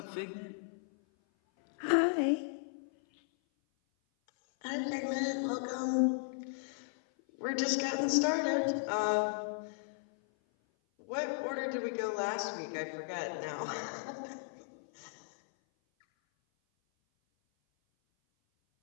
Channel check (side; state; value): right; silent; 54 dB below the other